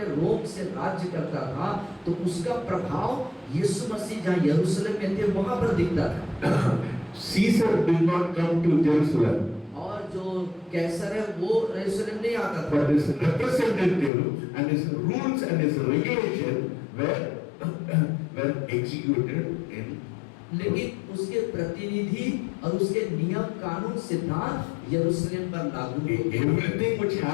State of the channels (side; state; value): right; drops out; at 14.1 s